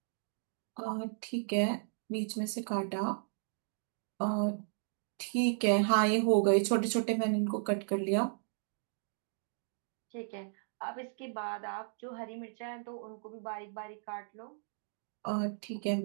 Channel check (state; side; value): silent; left; digital silence